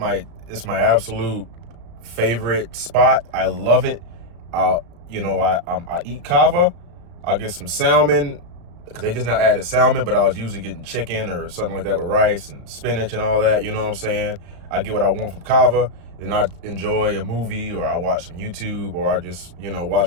my absolute favorite spot. I love it. I eat kava. I'll get some salmon, because they just not added salmon, but I was usually getting chicken or something like that with rice and spinach and all that. You know what I'm saying? I get what I want from kava, and I enjoy a movie, or I watch some YouTube, or I just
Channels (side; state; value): left; late; 35 ms